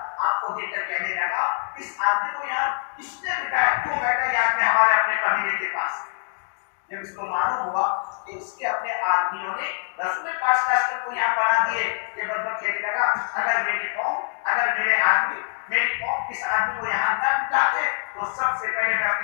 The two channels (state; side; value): silent; right; digital silence